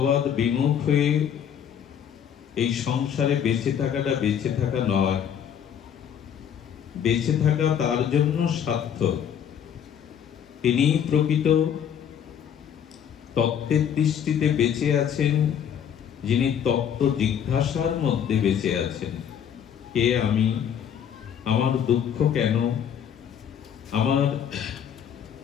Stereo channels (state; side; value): quieter; right; 8.7 dB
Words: বিমুখ হয়ে এই সংসারে বেঁচে থাকাটা বেঁচে থাকা নয়। বেঁচে থাকা তার জন্য সার্থক তিনি প্রকৃত তত্ত্বের দৃষ্টিতে বেঁচে আছেন, যিনি তত্ত্ব জিজ্ঞাসার মধ্যে বেঁচে আছেন। কে আমি? আমার দুঃখ কেন? আমার